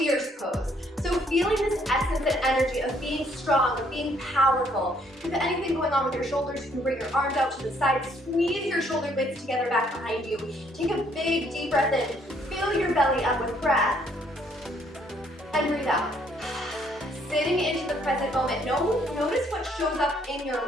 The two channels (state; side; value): normal; both; correlation 0.66